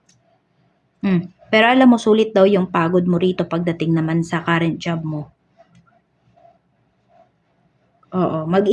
Pero alam mo, sulit daw yung pagod mo rito pagdating naman sa current job mo. Oo,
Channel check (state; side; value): identical; both; correlation 1.00